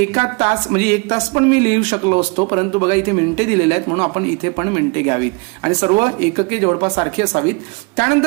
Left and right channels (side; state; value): left; quieter; 29.4 dB